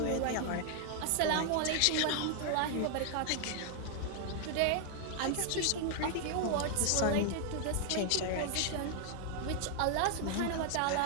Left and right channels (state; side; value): different; both; correlation 0.00